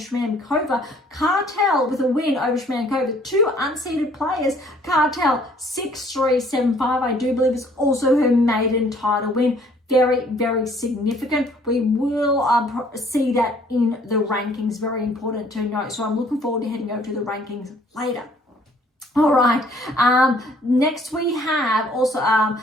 Cartel with a win over Shramkova. 2 unseeded players. Cartel 6-3, 7-5. I do believe it's also her maiden title win. Very, very significant. We will see that in the rankings. Very important to note. So I'm looking forward to heading over to the rankings later. All right, next we have also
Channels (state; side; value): normal; both; correlation 0.59